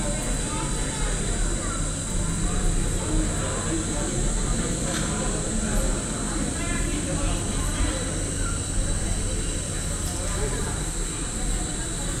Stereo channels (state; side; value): identical; both; correlation 1.00